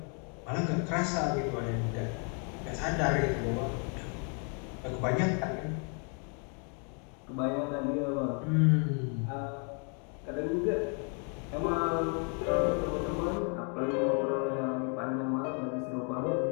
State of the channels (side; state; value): right; quieter; 39.1 dB